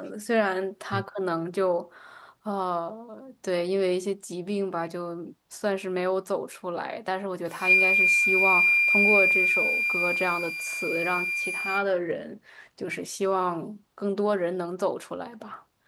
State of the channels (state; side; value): identical; both; correlation 1.00